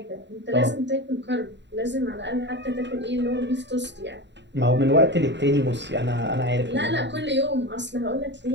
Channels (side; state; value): left; late; 0.52 ms